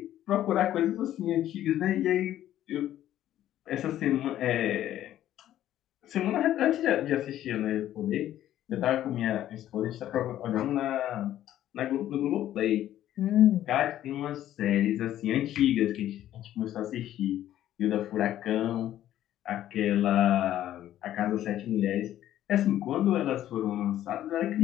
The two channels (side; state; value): right; quieter; 12.4 dB